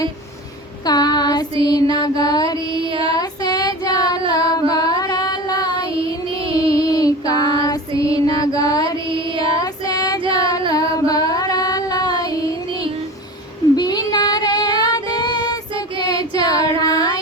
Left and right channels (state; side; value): normal; both; correlation 0.33